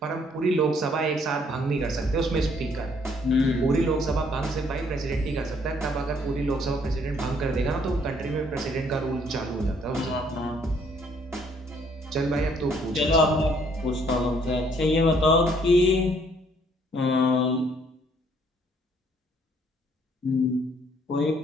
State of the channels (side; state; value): both; normal; correlation 0.65